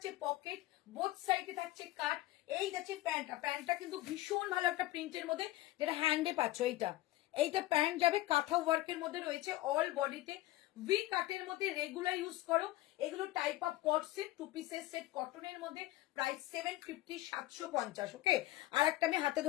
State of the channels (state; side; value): quieter; right; 16.9 dB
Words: পকেট, বোথ সাইডে থাকছে কাট। এই যাচ্ছে প্যান্টটা, প্যান্টটা কিন্তু ভীষণ ভালো একটা প্রিন্টের মধ্যে, যেটা হ্যান্ডে পাচ্ছ। এইটা প্যান্ট যাবে কাঁথা ওয়ার্কের মধ্যে রয়েছে, অল বডিতে ভি কাটের মধ্যে, রেগুলার ইউজ করো। এগুলো type of co-ord set, two পিসের সেট কটনের মধ্যে। প্রাইস 750, 750, ওকে। আর একটা আমি হাতে